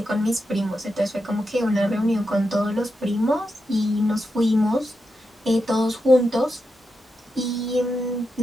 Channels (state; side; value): normal; both; correlation 0.87